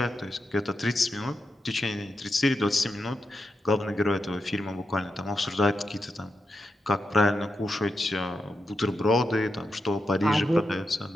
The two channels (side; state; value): both; normal; correlation 0.87